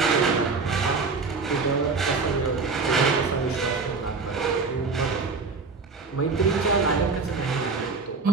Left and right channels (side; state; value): left; quieter; 4.4 dB